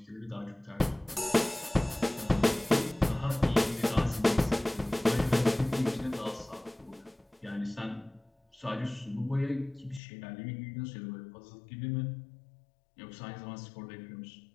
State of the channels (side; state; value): right; drops out; at 10.0 s